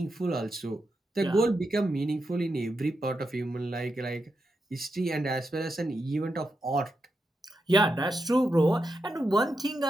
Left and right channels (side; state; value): both; normal; correlation 0.86